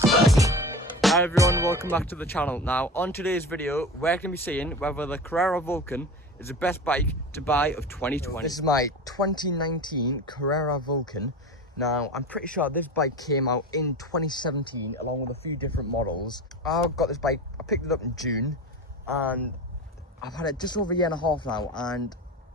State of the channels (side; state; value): both; normal; correlation 0.31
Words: Hi everyone, welcome back to the channel. Now on today's video we're going to be seeing whether the Carrera Vulcan is the best bike to buy of 2020. This is my 2019 Carrera Vulcan. Now I'm pretty sure this bike came out in 2017 along with a few different models. I got this bike, I picked it up in June and I've had it just over a year and a half now, and